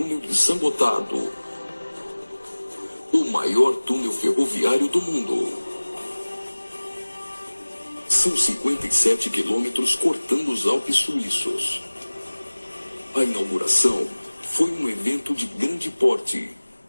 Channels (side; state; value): both; inverted; correlation -1.00